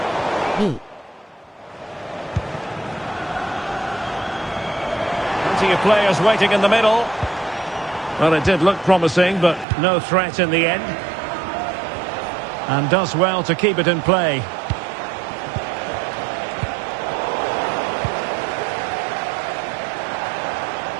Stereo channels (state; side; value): drops out; left; at 9.7 s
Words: B. Plenty of players waiting in the middle. Well, it did look promising, but no threat in the end. And does well to keep it in play.